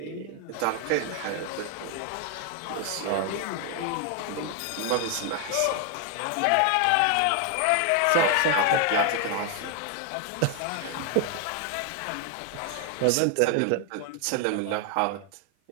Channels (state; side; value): different; both; correlation 0.00